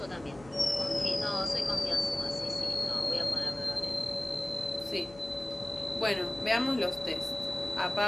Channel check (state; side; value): noise; left; hum, 20 dB below the sound